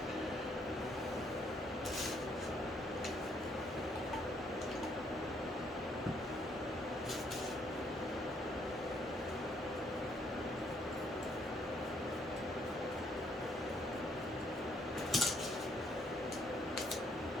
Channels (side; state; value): both; normal; correlation 0.69